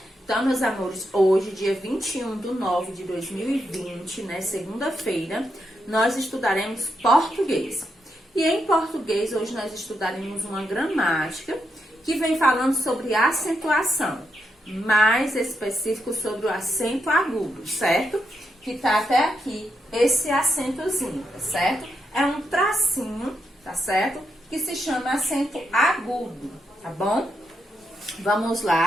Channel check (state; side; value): normal; both; correlation 0.82